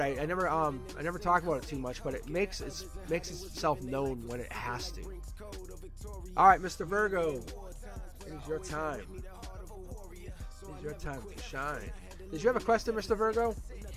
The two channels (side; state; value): both; identical; correlation 1.00